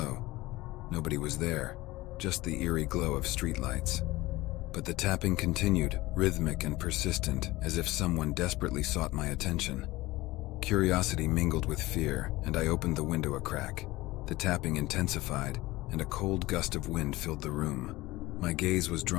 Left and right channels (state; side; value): quieter; right; 19.2 dB